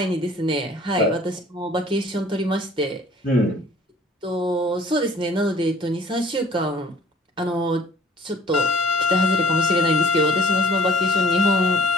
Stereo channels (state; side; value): normal; both; correlation 0.52